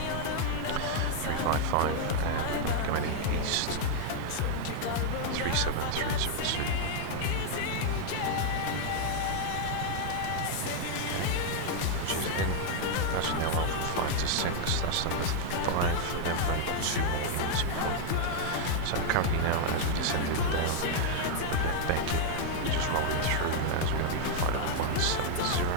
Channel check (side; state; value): both; different; correlation 0.00